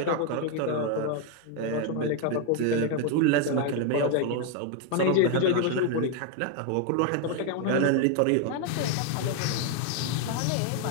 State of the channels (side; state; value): both; different; correlation 0.00